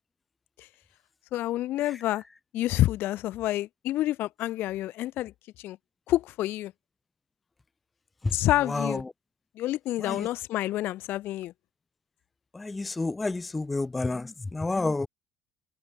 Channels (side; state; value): right; quieter; 9.1 dB